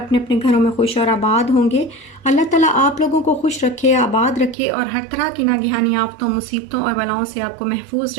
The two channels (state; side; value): drops out; left; at 4.5 s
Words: अपने घरों में खुश और आबाद होंगे। अल्लाह ताला आप लोगों को खुश रखे, आबाद रखे और हर तरह की नागहानी आफतों, मुसीबतों और बलाओं से आपको महफूज